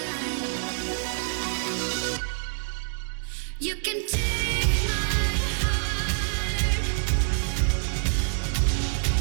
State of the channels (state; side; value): silent; left; digital silence